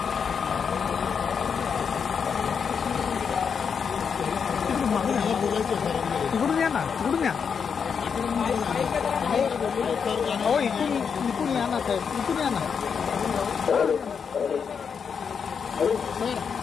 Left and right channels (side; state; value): right; quieter; 6.5 dB